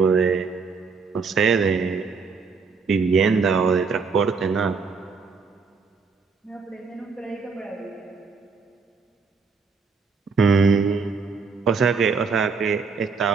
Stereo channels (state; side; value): quieter; left; 5.0 dB